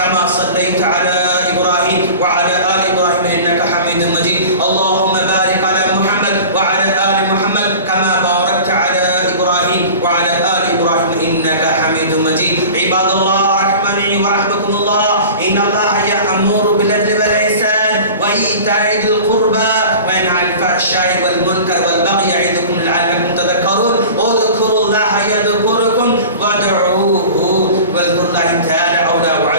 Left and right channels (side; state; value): both; inverted; correlation -0.37